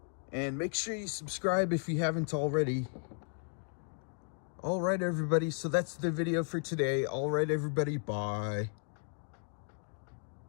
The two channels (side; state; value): right; silent; 55 dB below the other